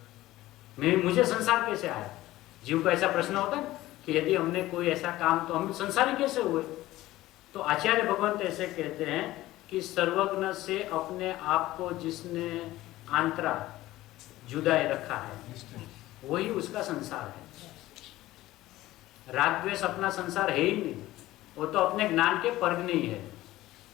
मुझे संसार कैसे आया? जीव को ऐसा प्रश्न होता है कि यदि हमने कोई ऐसा काम तो हम संसारी कैसे हुए? तो आचार्य भगवंत ऐसे कहते हैं कि सर्वज्ञ से अपने आप को जिसने आंतरा जुदाए रखा है वही उसका संसार है। राग द्वेष अपना संसार है ही नहीं, वो तो अपने ज्ञान के परगने ही है।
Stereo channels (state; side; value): quieter; right; 16.5 dB